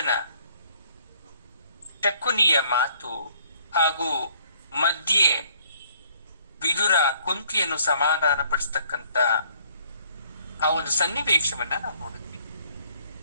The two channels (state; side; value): inverted; both; correlation -0.62